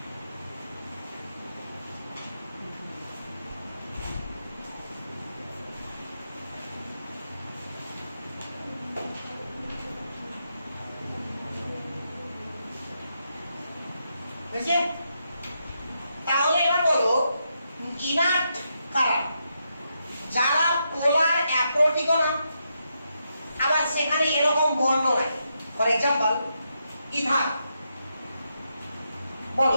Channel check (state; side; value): inverted; both; correlation -0.82